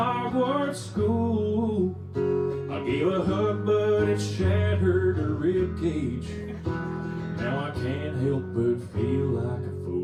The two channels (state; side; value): identical; both; correlation 1.00